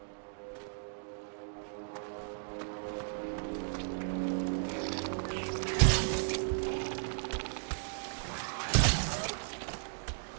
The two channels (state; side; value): silent; left; digital silence